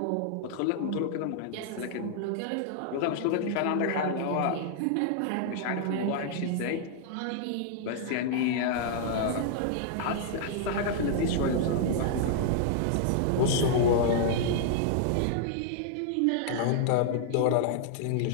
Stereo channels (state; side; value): different; both; correlation -0.01